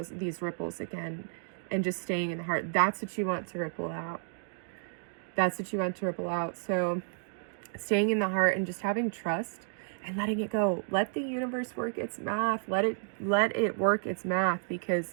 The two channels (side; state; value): left; silent; digital silence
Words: ripples again and just staying in the heart. That's what you want to ripple out. That's what you want to ripple out. So staying in the heart and just having trust and letting it go. Let the universe work its math. Let it work its math,